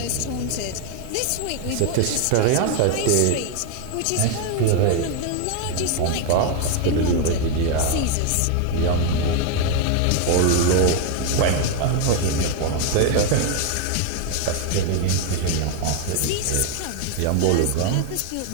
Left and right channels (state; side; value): different; both; correlation 0.01